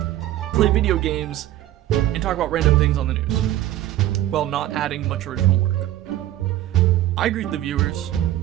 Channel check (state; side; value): quieter; left; 13.7 dB